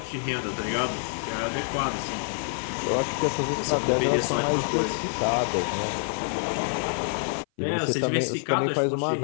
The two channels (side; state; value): right; silent; 56 dB below the other